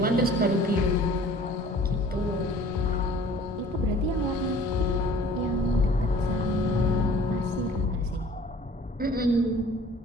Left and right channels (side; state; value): both; normal; correlation 0.50